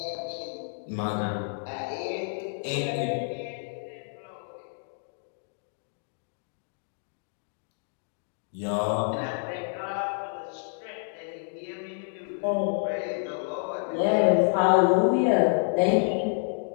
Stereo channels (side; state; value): right; silent; digital silence